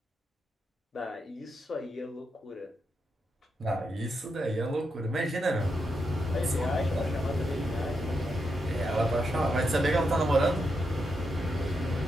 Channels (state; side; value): normal; both; correlation 0.83